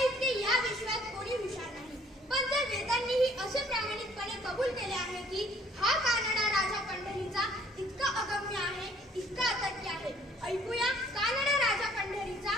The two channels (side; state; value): both; normal; correlation 0.59